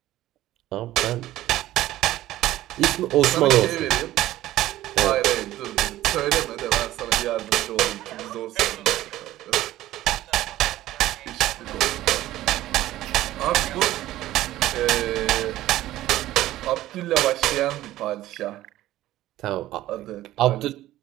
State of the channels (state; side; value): quieter; left; 14.9 dB